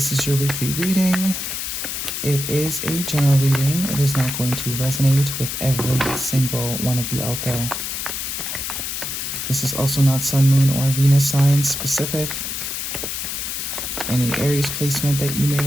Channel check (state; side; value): noise; left; hiss, 4 dB below the sound